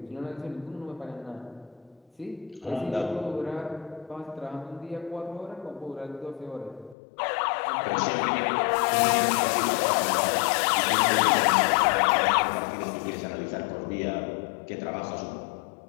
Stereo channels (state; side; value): drops out; right; at 7.0 s